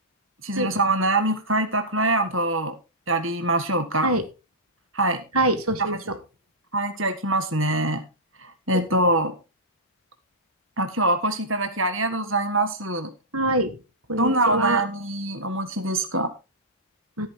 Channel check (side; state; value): both; normal; correlation -0.15